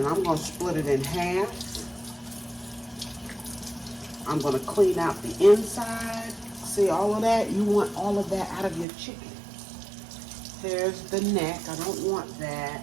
I'm going to split it in half. I'm going to clean out the inside. See all of that? You want all of that out of your chicken. There's the neck. I don't want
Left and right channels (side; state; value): left; drops out; at 8.8 s